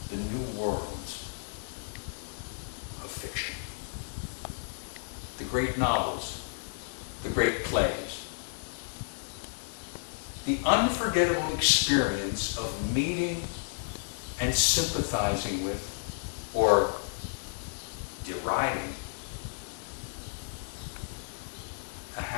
the new worlds of fiction. The great novels, the great plays, the unforgettable experience of meeting and sympathizing with, or deriding, a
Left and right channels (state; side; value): silent; right; digital silence